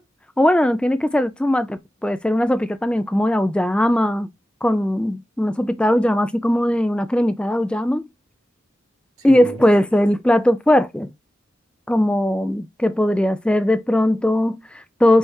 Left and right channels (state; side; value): normal; both; correlation 0.94